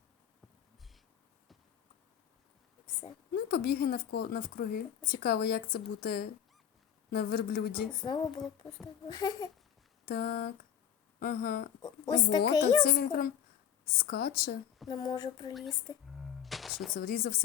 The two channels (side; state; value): right; quieter; 9.4 dB